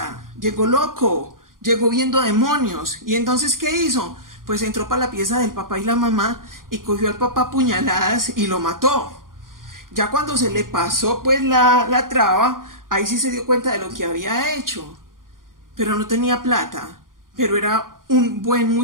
llegó loco, llegó viendo demonios. Y entonces, ¿qué hizo? pues entró para la pieza del papá y la mamá y cogió al papá a puñaladas y lo mató. Ya cuando se le pasó pues la traba, ahí sí se dio cuenta de lo que había hecho, pero no tenía plata, pero era un buen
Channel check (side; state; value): left; late; 0.90 ms